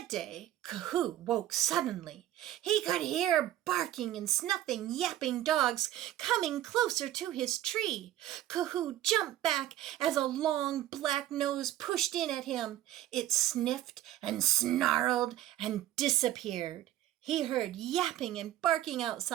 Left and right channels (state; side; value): quieter; left; 13.4 dB